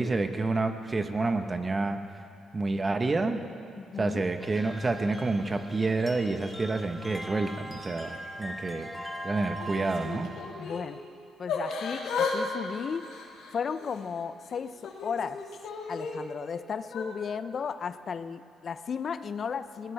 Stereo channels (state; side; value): normal; both; correlation 0.86